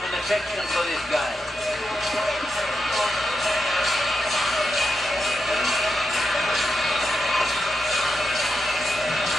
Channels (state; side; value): normal; both; correlation 0.86